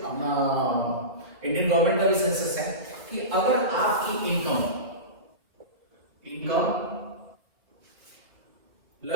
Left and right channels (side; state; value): left; late; 3.9 ms